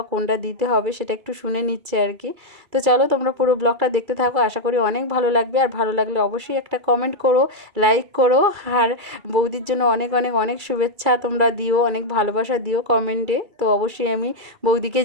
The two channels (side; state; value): left; late; 2.3 ms